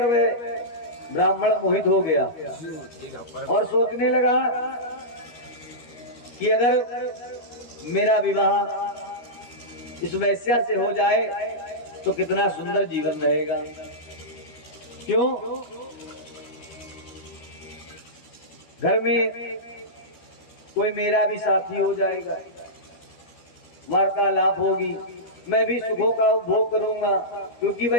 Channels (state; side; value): late; right; 13 ms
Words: वह ब्राह्मण मोहित हो गया और सोचने लगा कि अगर मेरा विवाह इस वैश्या से हो जाए तो कितना सुंदर जीवन रहेगा। क्यों? घर में कोई मेरा भी साथी हो जाएगा, वार्तालाप होगी, मैं भी सुखों का उपभोग करूंगा। क्योंकि